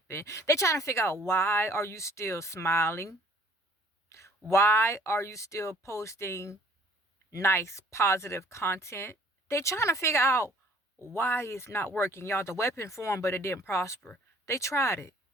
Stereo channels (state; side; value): normal; both; correlation 0.56